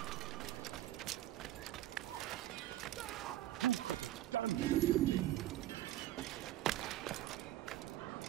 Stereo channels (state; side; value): quieter; left; 14.3 dB